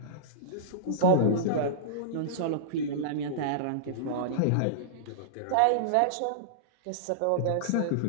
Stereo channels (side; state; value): both; different; correlation -0.03